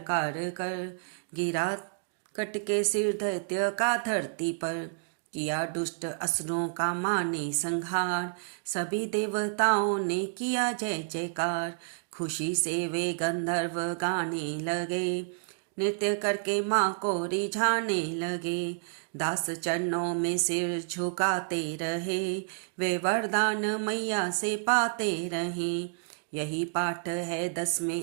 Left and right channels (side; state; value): left; silent; digital silence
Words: कर, गिरा कट के सिर दैत्य का धरती पर। किया दुष्ट असुरों का माने संहार, सभी देवताओं ने किया जय जयकार। खुशी से वे गंधर्व गाने लगे, नृत्य करके माँ को रिझाने लगे। दास चरणों में सिर झुकाते रहे, वे वरदान मैया से पाते रहे। यही पाठ है